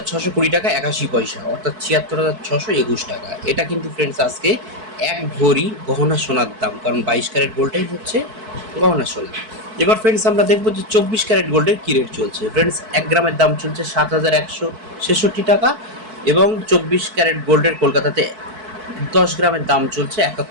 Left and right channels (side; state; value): left; late; 4.6 ms